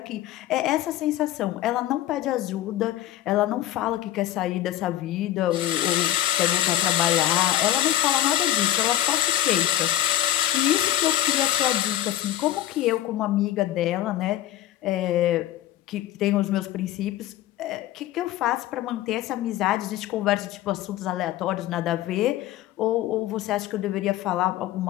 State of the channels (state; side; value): quieter; right; 13.6 dB